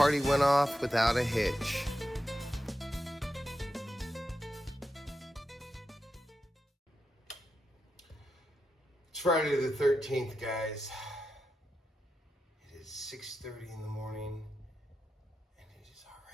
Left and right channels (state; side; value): normal; both; correlation 0.89